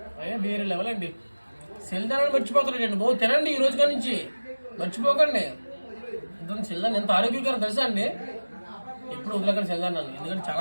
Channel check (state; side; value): inverted; both; correlation -1.00